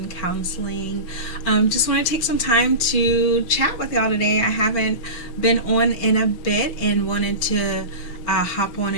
Counseling. Just want to take some time to chat with y'all today. I haven't been on in a bit and wanted to hop on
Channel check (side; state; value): right; late; 6.0 ms